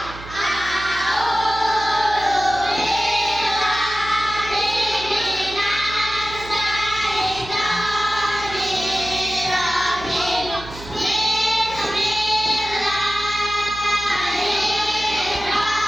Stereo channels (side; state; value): right; noise; hum, 15 dB below the sound